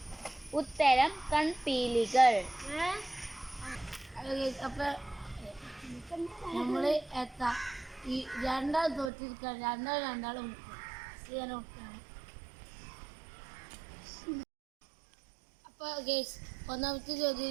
ഉത്തരം കൺപീലികൾ. അപ്പൊ നമ്മള് ഈ രണ്ടാൾ തോറ്റിരിക്കാൻ രണ്ടാളും അപ്പൊ ഗൈസ്, ഒന്നാമത്തെ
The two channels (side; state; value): left; drops out; at 9.1 s